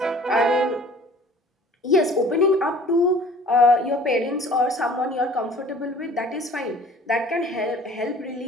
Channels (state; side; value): normal; both; correlation 0.49